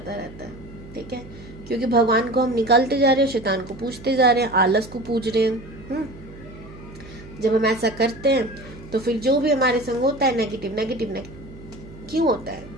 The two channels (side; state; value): right; noise; hum, 18 dB below the sound